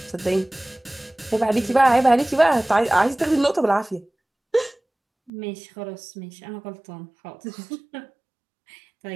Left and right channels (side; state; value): left; drops out; at 5.3 s